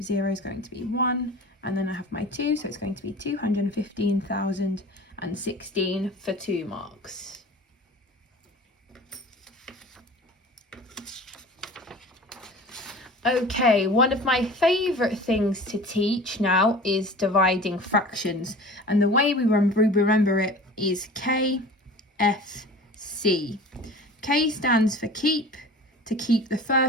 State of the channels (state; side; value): normal; both; correlation 0.40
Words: is going to be 1, and then I have my 2, so it's going to be 215,016 for 2 marks. Okay, one of my favourite things to teach now is dividing fractions, and the way we remember it is KS2. K stands for keep, to keep the